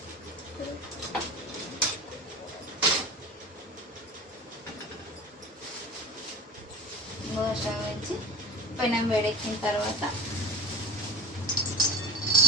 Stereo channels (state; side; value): normal; both; correlation 0.35